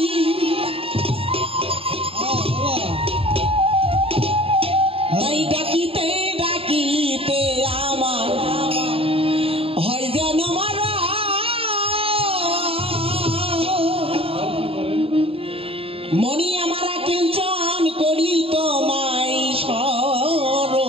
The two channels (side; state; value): left; late; 0.27 ms